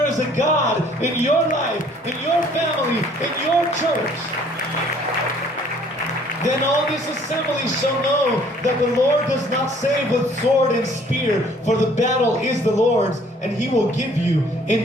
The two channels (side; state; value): both; normal; correlation 0.57